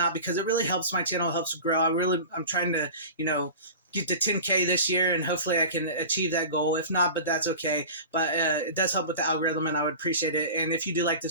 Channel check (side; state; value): both; inverted; correlation -0.35